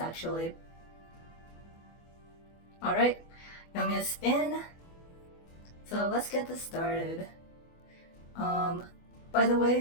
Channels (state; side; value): late; right; 24 ms